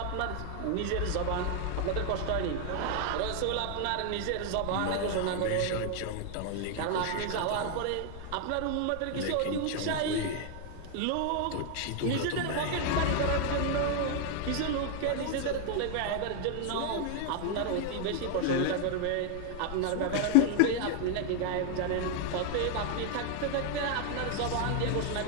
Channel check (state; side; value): different; both; correlation 0.00